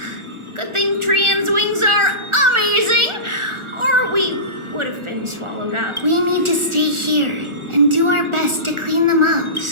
Good thing Trian's wings are amazing, or we would have been swallowed up. We need to stay here and do our best to clean them up.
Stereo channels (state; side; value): late; left; 1.4 ms